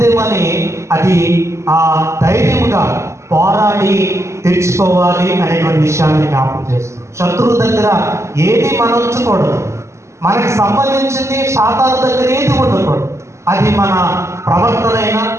అని అది ధైర్యంగా పోరాడి తెచ్చుకోవాలి అనేటువంటి విషయాన్ని జ్ఞాపకం చేస్తుంది. శత్రువు దగ్గర ఏది మనం ఉంచకూడదు, మనకి సంబంధించింది సాతాను దగ్గర ఏది ఉండకూడదు. అది మన ప్రవర్తన అయినా,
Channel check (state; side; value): late; left; 0.14 ms